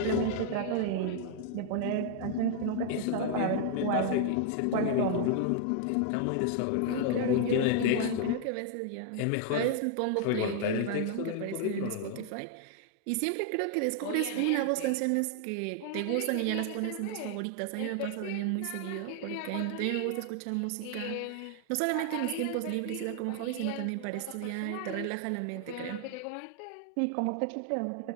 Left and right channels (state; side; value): different; both; correlation 0.00